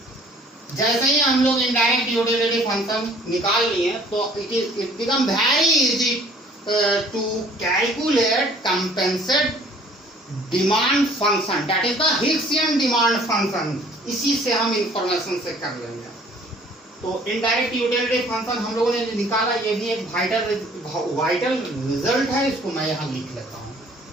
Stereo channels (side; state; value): both; normal; correlation 0.55